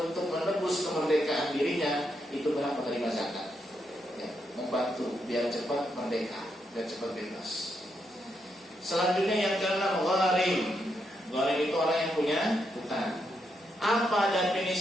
menebus kemerdekaan dirinya itu berhak menerima zakat. Ya, membantu biar cepat merdeka, biar cepat bebas. Selanjutnya yang keenam, gharim. Gharim itu orang yang punya hutang. Apa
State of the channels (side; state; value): both; normal; correlation 0.81